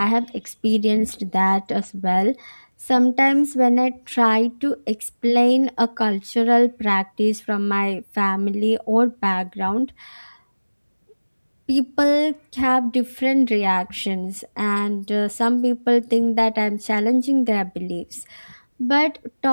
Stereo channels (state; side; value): inverted; both; correlation -1.00